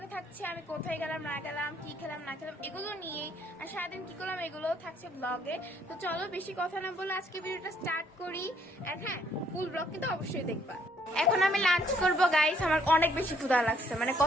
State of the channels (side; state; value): both; normal; correlation 0.66